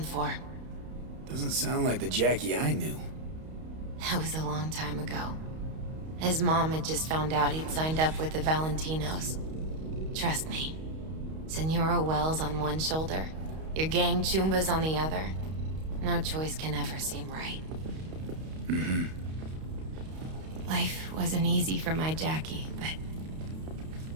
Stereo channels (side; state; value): left; late; 32 ms